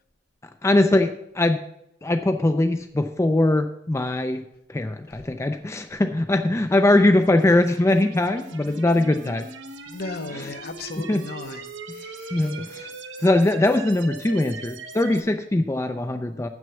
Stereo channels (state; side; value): normal; both; correlation 0.84